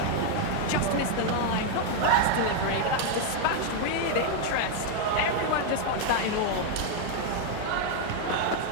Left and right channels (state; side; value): different; both; correlation 0.00